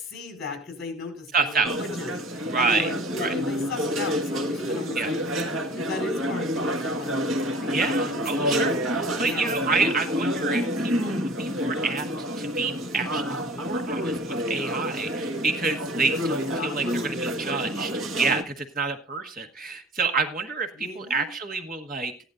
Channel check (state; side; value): normal; both; correlation 0.45